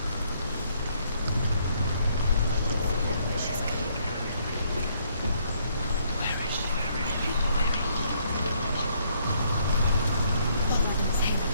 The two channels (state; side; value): inverted; both; correlation -0.68